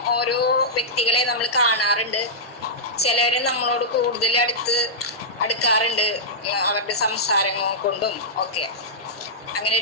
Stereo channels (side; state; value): both; normal; correlation -0.12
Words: ഓരോ വ്യക്തികളെ നമ്മൾ കാണാറുണ്ട്. ചിലര് നമ്മളോട് കൂടുതൽ അടുക്കാറുണ്ട് അവരുടെ സംസാരങ്ങൾ കൊണ്ടും ഒക്കെ. അങ്ങനെ